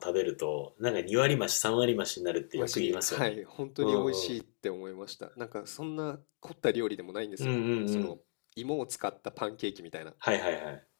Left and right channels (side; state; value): right; silent; digital silence